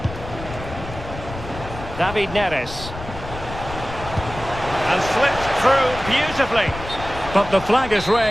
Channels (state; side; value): noise; left; rumble, 11 dB below the sound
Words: David Neres. And slipped through beautifully. But the flag is